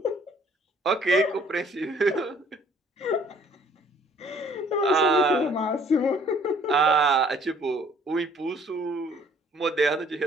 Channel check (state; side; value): normal; both; correlation 0.59